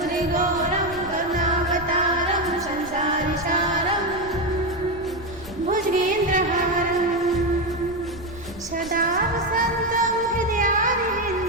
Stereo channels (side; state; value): right; noise; rumble, 19 dB below the sound